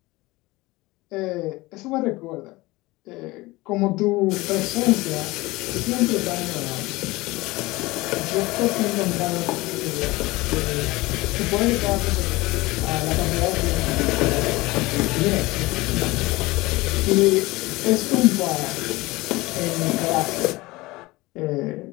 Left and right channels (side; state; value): right; quieter; 21.0 dB